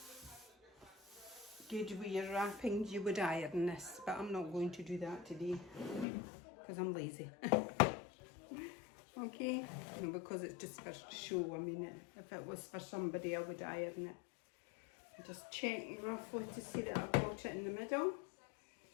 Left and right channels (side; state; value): right; drops out; at 6.1 s